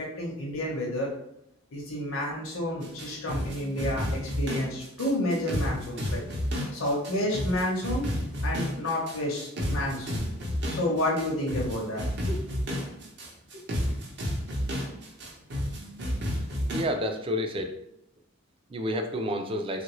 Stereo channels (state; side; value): normal; both; correlation 0.49